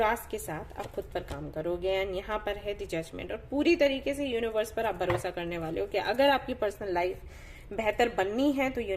के साथ आप खुद पर काम करोगे। एंड यहाँ पर है द जजमेंट, और पूरी तरीके से यूनिवर्स पर आप भरोसा करने वाले हो कि अगर आपकी पर्सनल लाइफ बेहतर बननी है तो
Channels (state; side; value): identical; both; correlation 1.00